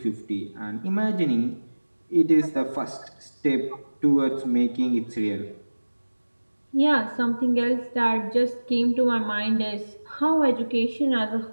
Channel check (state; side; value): inverted; both; correlation -1.00